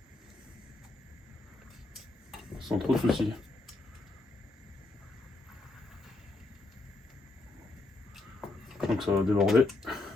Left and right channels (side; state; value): right; quieter; 3.0 dB